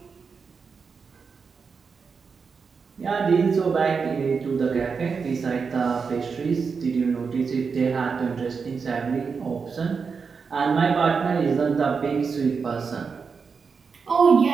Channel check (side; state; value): left; quieter; 5.4 dB